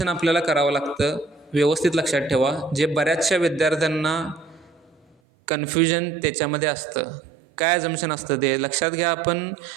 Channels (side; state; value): left; drops out; at 5.2 s